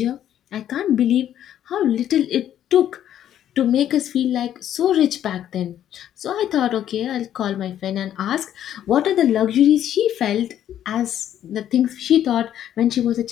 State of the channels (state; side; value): quieter; right; 10.9 dB